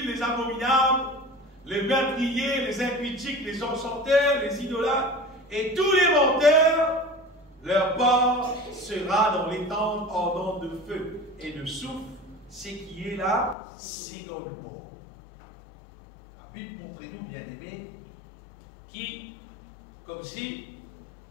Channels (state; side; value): drops out; right; at 13.6 s